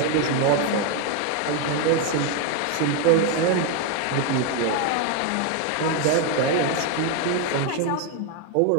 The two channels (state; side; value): different; both; correlation 0.02